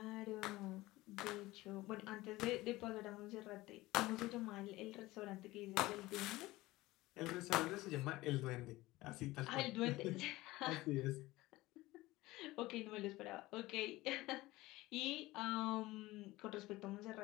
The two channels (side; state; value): right; quieter; 18.9 dB